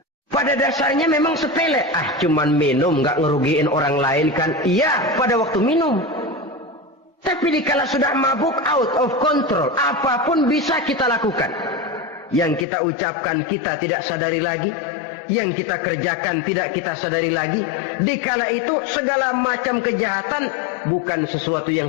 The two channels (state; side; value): drops out; right; at 12.7 s